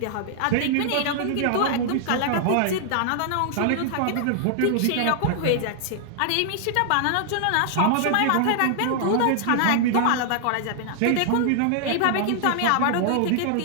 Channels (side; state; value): both; different; correlation -0.01